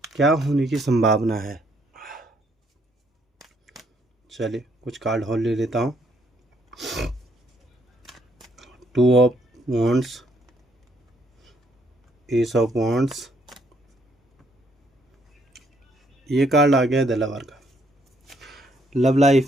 क्या होने की संभावना है। चलिए कुछ कार्ड और ले लेता हूँ। 2 of wands, S of wands, ये कार्ड आ गया है द लवर का। लव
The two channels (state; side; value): normal; both; correlation 0.70